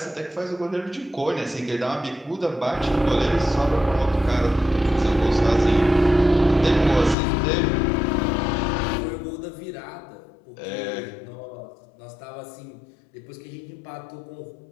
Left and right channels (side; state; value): right; drops out; at 7.2 s